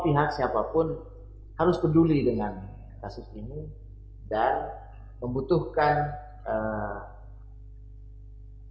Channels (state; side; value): identical; both; correlation 1.00